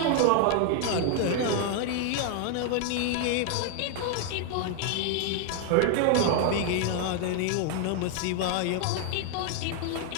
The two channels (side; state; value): both; different; correlation 0.00